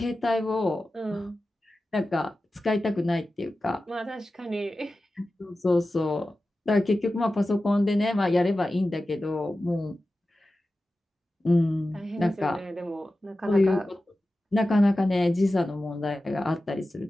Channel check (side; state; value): both; normal; correlation 0.94